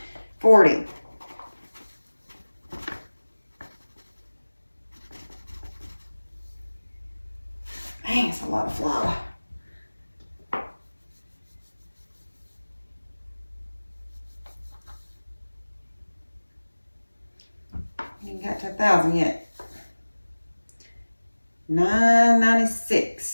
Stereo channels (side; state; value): both; inverted; correlation -1.00